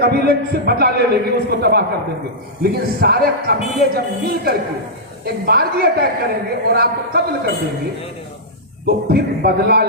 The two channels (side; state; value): both; normal; correlation -0.11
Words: سے بدلہ لے لیں گے, اس کو تباہ کر دیں گے. لیکن سارے قبیلے جب مل کر کے ایک بارگی اٹیک کریں گے اور آپ کو قتل کر دیں گے تو پھر بدلہ